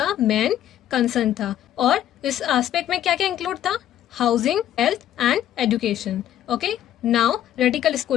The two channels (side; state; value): right; quieter; 11.6 dB